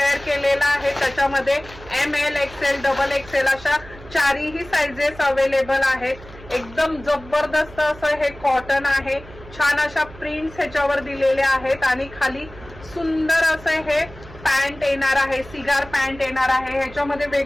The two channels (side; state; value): right; noise; hum, 19 dB below the sound